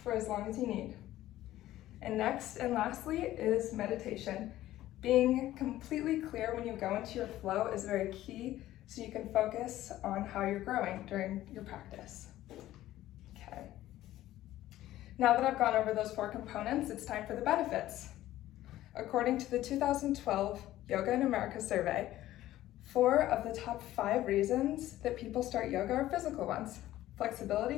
for as long as you need. And next and lastly is meditation. Being completely clear when you go into your flow is very key, so you can focus on how you're growing during your practice. Okay. Now that I've gone over those 4 components, it's time for the benefits. According to the 2012 Yoga in America survey, 4 of the top 5 reasons that people start yoga are physical ones:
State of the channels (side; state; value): right; quieter; 14.5 dB